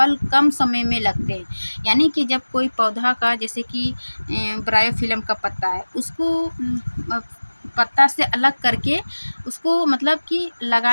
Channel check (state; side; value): inverted; both; correlation -1.00